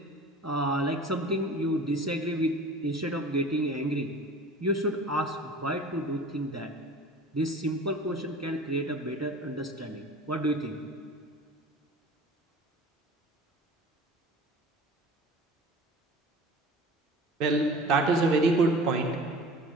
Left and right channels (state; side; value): normal; both; correlation 0.41